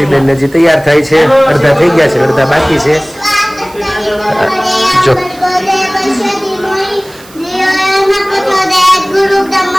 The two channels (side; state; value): right; noise; hiss, 23 dB below the sound